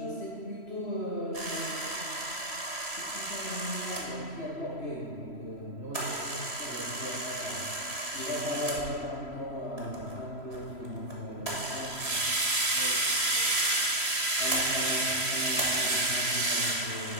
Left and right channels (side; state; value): right; late; 3.0 ms